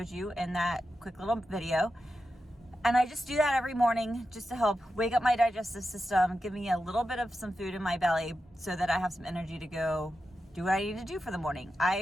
you in that quick little video. And I just do that every morning just to help wake up my digestive system, give me a little bit of some food in my belly so that I have some energy to go do what I need to do for the morning.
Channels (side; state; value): both; normal; correlation 0.90